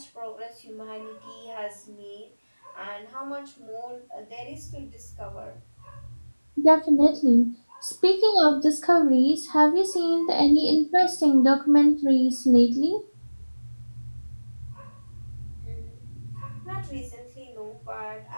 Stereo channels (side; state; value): both; inverted; correlation -1.00